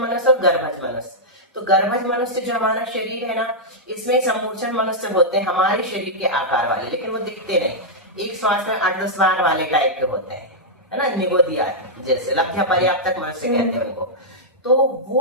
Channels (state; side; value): normal; both; correlation -0.08